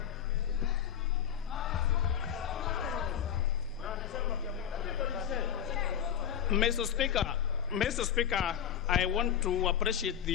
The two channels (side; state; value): right; quieter; 9.3 dB